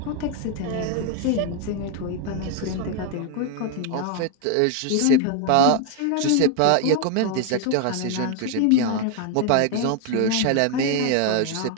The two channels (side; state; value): both; different; correlation 0.01